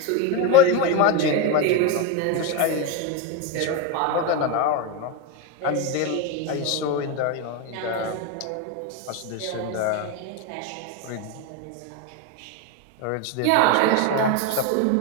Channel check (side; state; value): both; different; correlation 0.04